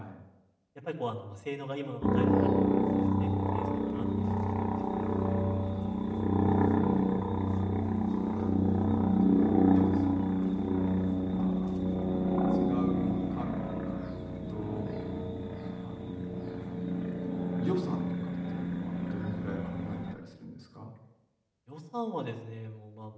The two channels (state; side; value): identical; both; correlation 1.00